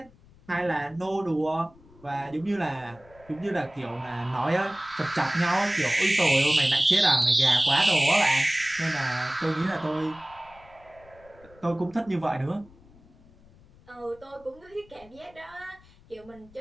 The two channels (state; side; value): noise; left; rumble, 26 dB below the sound